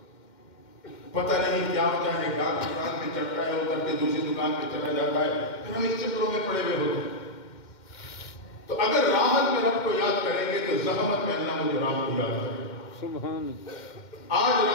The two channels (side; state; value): right; late; 2.1 ms